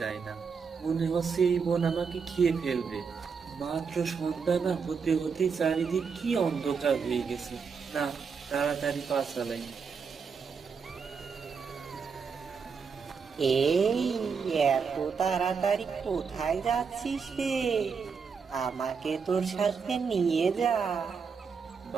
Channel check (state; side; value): quieter; left; 5.7 dB